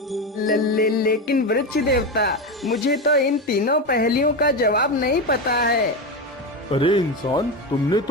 लेकिन वृक्ष देवता, मुझे तो इन तीनों पहेलियों का जवाब नहीं पता है। अरे इंसान, तुमने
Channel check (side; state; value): both; normal; correlation 0.16